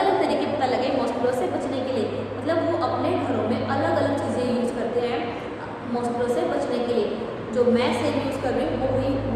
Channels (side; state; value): both; identical; correlation 1.00